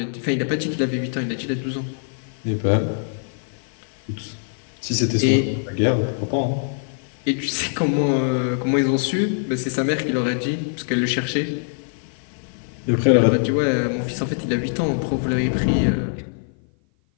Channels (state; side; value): silent; right; 55 dB below the other